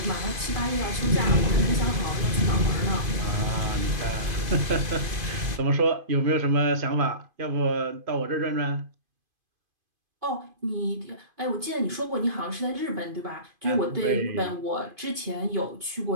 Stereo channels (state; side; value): late; left; 2.5 ms